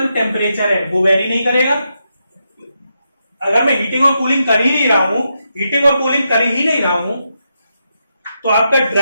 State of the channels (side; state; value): both; inverted; correlation -0.84